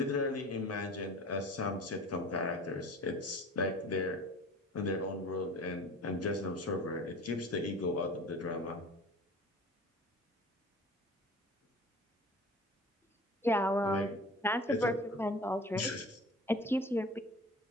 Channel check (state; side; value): normal; both; correlation 0.40